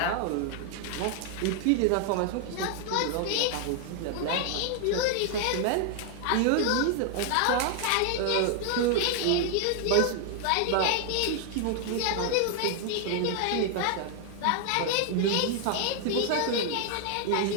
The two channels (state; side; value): different; both; correlation 0.00